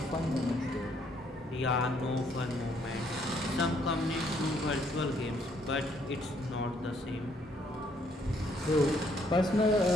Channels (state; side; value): normal; both; correlation 0.68